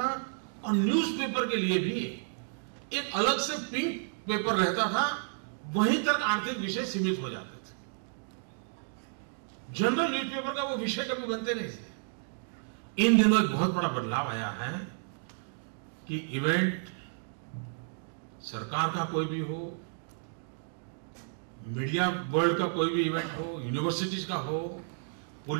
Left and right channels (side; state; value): left; silent; digital silence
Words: और न्यूज़पेपर के लिए भी एक अलग से पिंक पेपर रहता था, वहीं तक आर्थिक विषय सीमित हो जाते थे। जनरल न्यूज़पेपर का वो विषय कभी बनते नहीं थे। इन दिनों एक बहुत बड़ा बदलाव आया है कि इवेंट सरकार का कोई भी हो, मीडिया वर्ल्ड का कोई भी इवेंट हो, यूनिवर्सिटीज का हो,